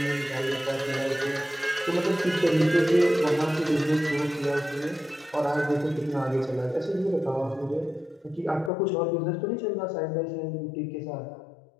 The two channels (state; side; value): drops out; right; at 8.7 s